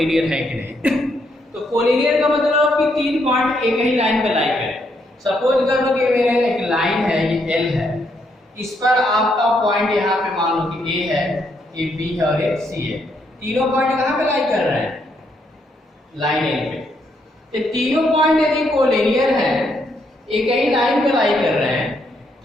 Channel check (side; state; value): both; normal; correlation 0.75